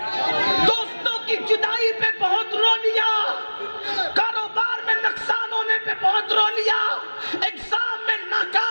دوستوں کی جدائی پہ بہت رو لیا, کاروبار میں نقصان ہونے پہ بہت رو لیا, ایگزام میں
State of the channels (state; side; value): inverted; both; correlation -1.00